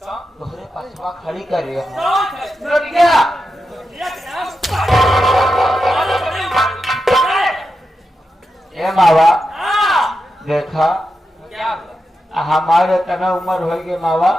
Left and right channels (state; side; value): normal; both; correlation 0.88